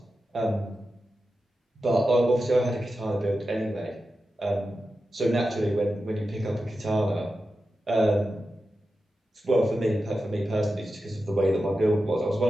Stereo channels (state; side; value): normal; both; correlation 0.91